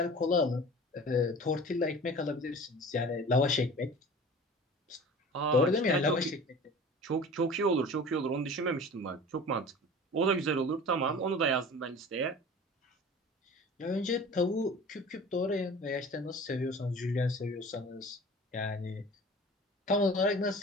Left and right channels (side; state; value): both; normal; correlation 0.41